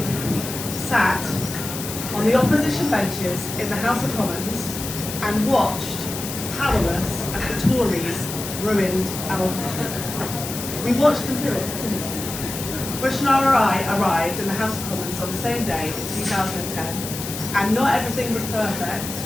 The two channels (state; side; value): noise; left; hiss, 7 dB below the sound